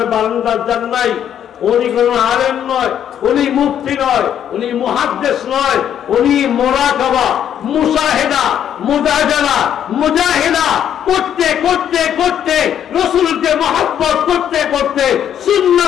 বারান্দার যান নাই, উনি কোন আলেম নয়, উনি মুফতি নয়, উনি মুহাদ্দিস নয়, উনি মুরাকাবা, মুশাহিদা, মুজাদালা, মুজাহিদা করতে করতে করতে, রাসূলকে মহব্বত করতে করতে,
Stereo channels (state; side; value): quieter; right; 9.7 dB